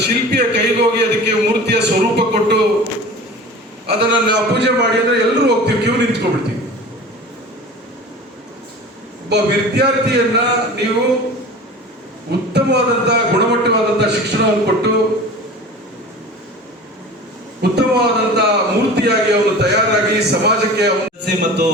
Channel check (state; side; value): normal; both; correlation 0.37